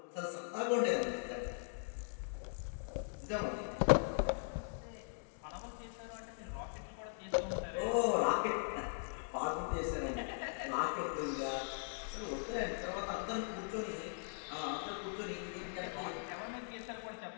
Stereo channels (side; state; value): right; silent; 51 dB below the other